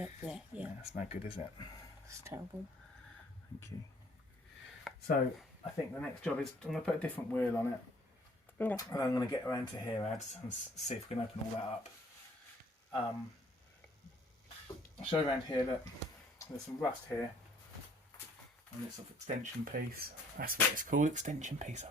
Yeah. Yeah, that's no good, is it? It's terrible. Thank you. So I think the next job is I'm going to put a different wheel on it. Okay. And I'm going to get around to here, Ads, and see if we can open all that up. I'll show you around here that there's some rust here. on this sort of extension piece. That's what it's called, extension piece, I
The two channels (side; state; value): both; normal; correlation 0.59